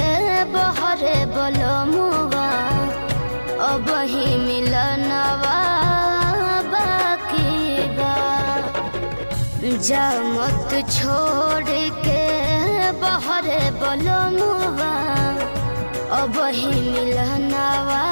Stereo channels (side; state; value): both; inverted; correlation -1.00